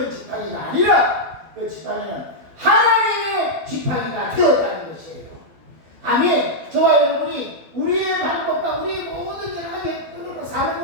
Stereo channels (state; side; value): late; left; 12 ms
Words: 지팡이가 아니라 그 지팡이는 하나님의 지팡이가 되었다는 것이에요. 아멘. 저와 여러분이 우리의 방법과 우리의 모든 여러 가지 사는